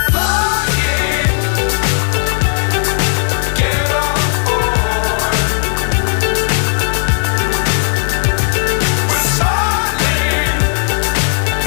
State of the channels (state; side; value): silent; right; digital silence